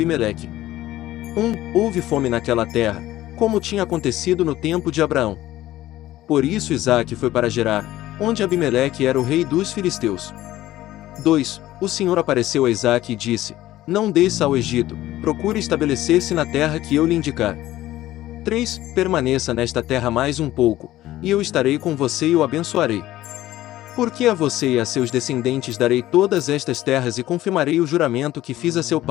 1. Houve fome naquela terra, como tinha acontecido no tempo de Abraão. Por isso Isaque foi para Gerar, onde Abimeleque era o rei dos filisteus. 2. O Senhor apareceu a Isaque e disse: Não desça ao Egito, procure estabelecer-se na terra que eu lhe indicar. 3. Permaneça nesta terra mais um pouco, e eu estarei com você e o abençoarei. Porque a você e a seus descendentes darei todas estas terras e confirmarei o juramento que fiz a seu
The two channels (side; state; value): right; quieter; 15.0 dB